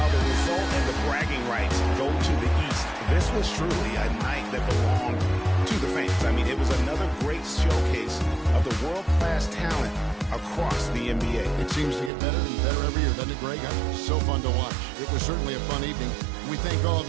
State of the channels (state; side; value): drops out; left; at 12.1 s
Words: the result and the bragging rights go to the East, this was truly a night that belonged to the fans. I mean, it was another great showcase of the world-class talent across the NBA. It seems to get better and better every year, doesn't it, Greg? So fun to watch. It was certainly a fun evening. We thank all